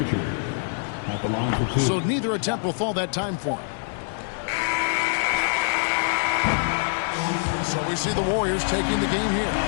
at the line for 2. So neither attempt will fall that time for him. So we see the Warriors taking the game here.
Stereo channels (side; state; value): right; silent; digital silence